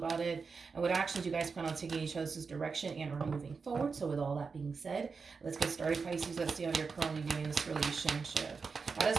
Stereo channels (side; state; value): left; quieter; 5.0 dB